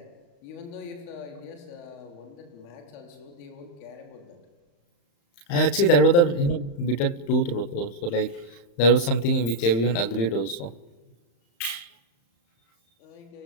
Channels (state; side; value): late; right; 35 ms